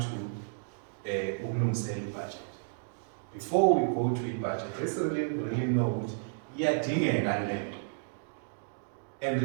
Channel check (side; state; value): left; silent; digital silence